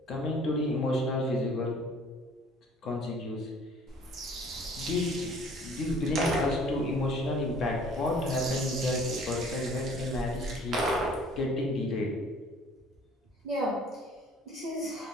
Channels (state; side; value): normal; both; correlation 0.53